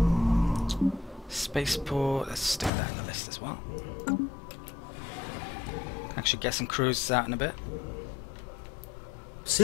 Spaceport, let's stick that in the list as well. Can I actually get some cruisers out in a bit.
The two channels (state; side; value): drops out; right; at 2.7 s